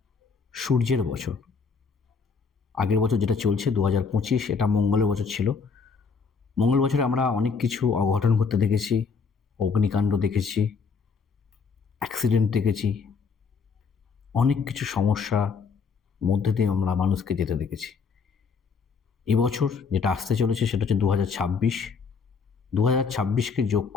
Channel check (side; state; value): right; quieter; 5.3 dB